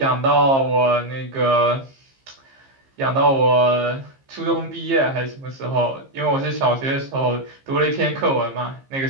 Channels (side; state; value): left; late; 15 ms